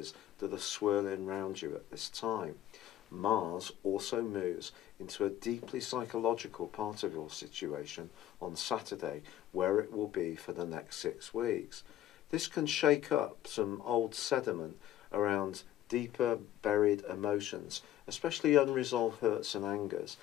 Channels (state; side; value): quieter; right; 12.5 dB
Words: that are swirling around you at this time. Mars also moves into a deeply psychological part of your situation on Saturday, where it will be for the next 6 weeks. This can shake up some old sediment around deeper buried emotions, especially unresolved hurts and angers,